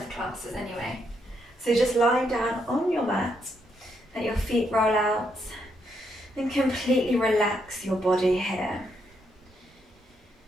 classes anyway. So just lying down on your mat, let your feet roll out and completely relax your body here.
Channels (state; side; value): normal; both; correlation 0.77